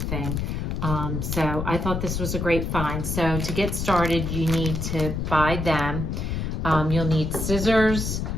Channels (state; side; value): noise; left; rumble, 2 dB below the sound